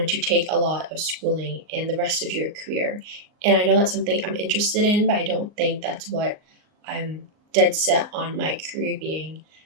to take a lot of schooling and the rest of your career. And I know that's something I'm interested in, but I don't think that's what I'm dead set on my career being.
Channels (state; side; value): late; left; 38 ms